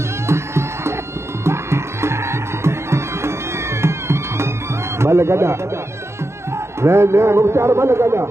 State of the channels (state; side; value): late; left; 0.13 ms